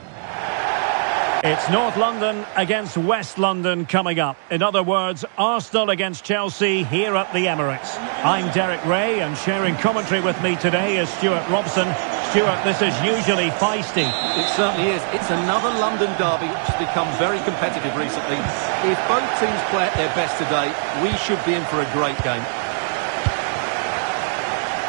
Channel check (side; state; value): left; silent; digital silence